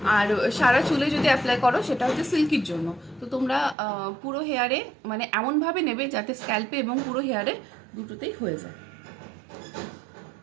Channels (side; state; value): left; drops out; at 3.8 s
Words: আর সারা চুলে যদি অ্যাপ্লাই করো সেটা হচ্ছে সিল্কির জন্য। তো তোমরা পুরো হেয়ারে মানে এমনভাবে নেবে যাতে স্ক্যাল্পে এবং পুরো হেয়ারে দুটোতেই হয়ে যায়।